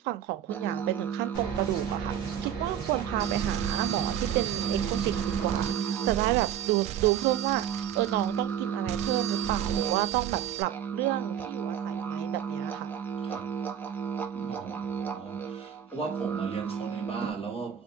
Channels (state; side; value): quieter; left; 9.7 dB